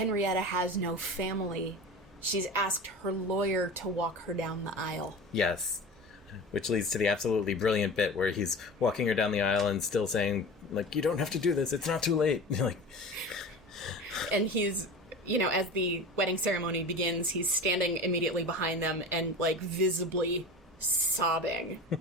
has no family, she's asked her lawyer to walk her down the aisle. Yes. Which leads to the absolutely brilliant bit where he's walking her down the aisle and still saying, like, you don't have to do this, it's not too late. Like, and he's, as the wedding ceremony begins, he's standing immediately behind them and, like, visibly sobbing.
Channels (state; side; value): normal; both; correlation 0.33